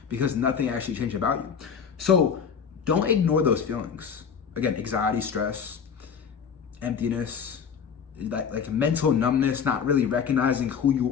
because nothing actually changed about you. So don't ignore those feelings. Again, anxiety, stress, emptiness, like mental numbness, not really recognizing who you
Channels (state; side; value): quieter; right; 6.9 dB